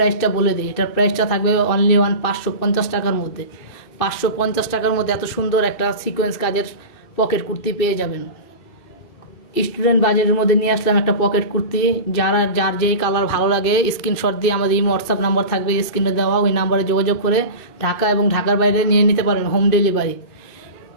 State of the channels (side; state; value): right; late; 2.6 ms